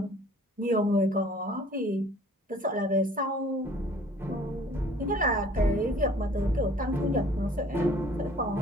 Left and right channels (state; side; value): normal; both; correlation 0.52